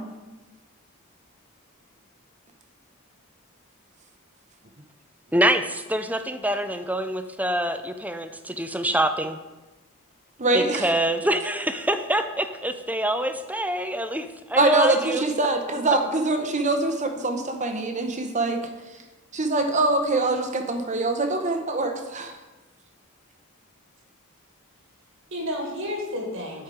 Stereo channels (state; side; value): normal; both; correlation 0.29